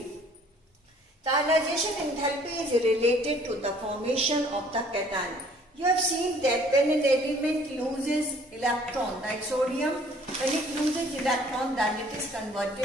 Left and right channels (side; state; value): both; normal; correlation 0.57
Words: The ionization enthalpy is related to the formation of the cation. You have seen that when an element loses electron, like sodium, when it loses electron, then it is